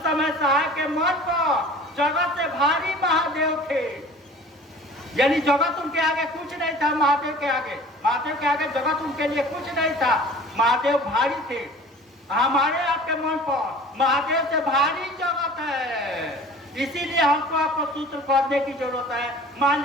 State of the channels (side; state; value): both; normal; correlation 0.44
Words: समय साहब के मन पर जगत से भारी महादेव थे, यानी जगत उनके आगे कुछ नहीं था। महादेव के आगे जगत उनके लिए कुछ नहीं था। महादेव भारी थे। हमारे आपके मन पर महादेव से भारी जगत है, इसीलिए हमको आपको सूत्र करने की जरूरत है। मान